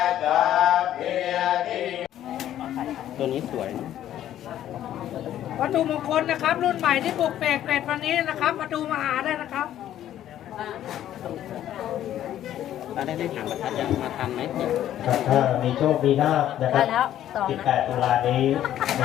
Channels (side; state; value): right; quieter; 11.8 dB